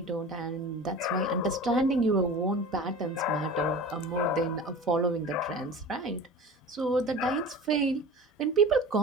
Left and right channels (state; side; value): normal; both; correlation 0.36